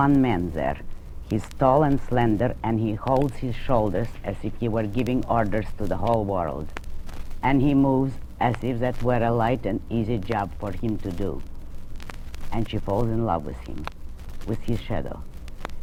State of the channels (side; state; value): both; identical; correlation 1.00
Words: man there. He's tall and slender, and he holds his shoulders as if he were giving orders to the whole world. And he moves as if that were a light and easy job for him to do. And she falls in love with him, with his shadow.